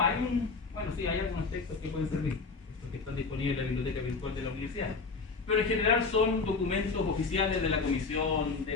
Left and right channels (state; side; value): quieter; right; 4.4 dB